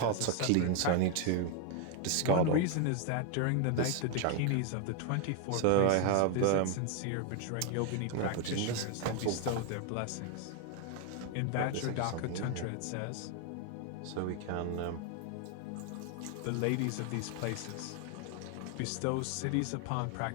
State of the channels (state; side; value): different; both; correlation 0.00